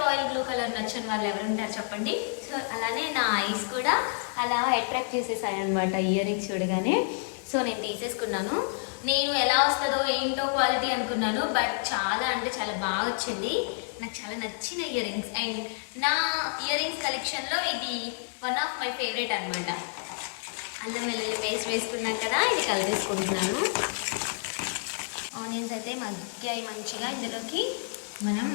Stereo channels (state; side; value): silent; right; 59 dB below the other